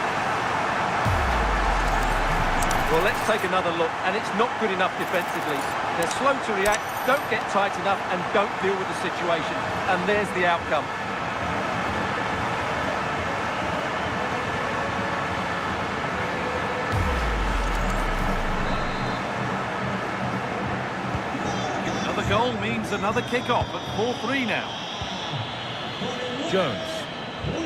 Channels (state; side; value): identical; both; correlation 1.00